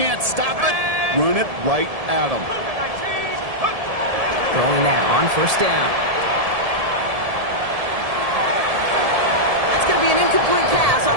stop it, run it right at them. Throwing now on 1st down. That's going to be an incomplete pass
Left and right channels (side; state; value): left; late; 1.7 ms